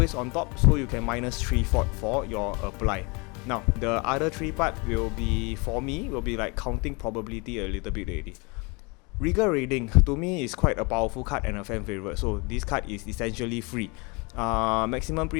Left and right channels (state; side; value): quieter; right; 29.5 dB